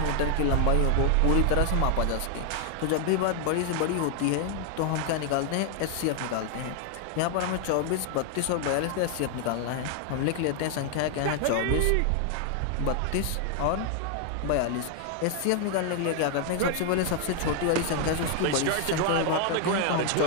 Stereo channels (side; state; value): both; different; correlation 0.00